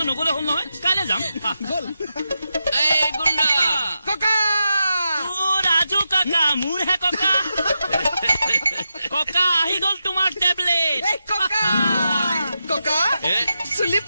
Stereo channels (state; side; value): inverted; both; correlation -0.88